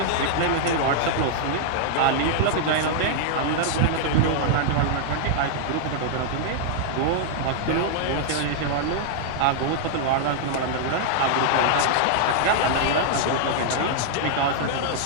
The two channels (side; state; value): both; different; correlation -0.01